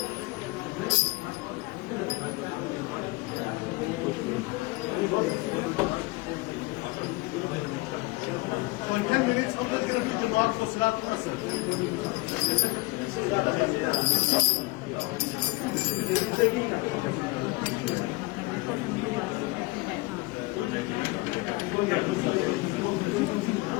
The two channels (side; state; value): right; quieter; 22.8 dB